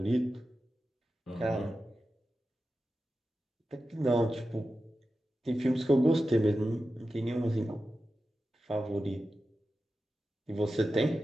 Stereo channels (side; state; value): both; normal; correlation 0.92